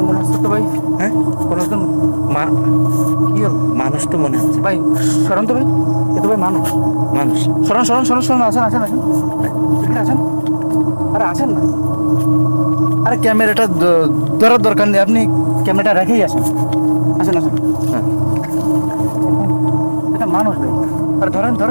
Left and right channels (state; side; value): inverted; both; correlation -1.00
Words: মনে হচ্ছে তো ভাই। হ্যাঁ, কোনো একজন কি হল? মানুষ তো মনে হচ্ছে। ভাই সরণ তো ভাই, এ তো ভাই মানুষ। মানুষ। সরণ সরণ সরণ সরণ, আসেন আসেন আসেন এখানে আসেন। আরে আসেন না, আরে ক্যামেরাটা ধরার দরকার নেই, আপনি ক্যামেরাটা রেখেই আসেন। আসেন আসেন। হ্যাঁ এটা মানুষ ভাই। আরে ধরেন